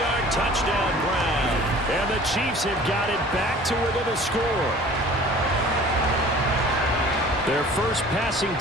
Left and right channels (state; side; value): normal; both; correlation 0.47